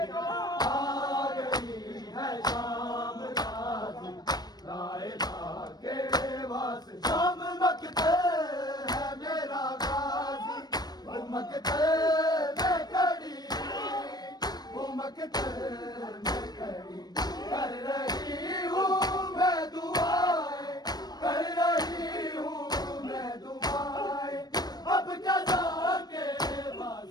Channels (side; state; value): right; late; 0.19 ms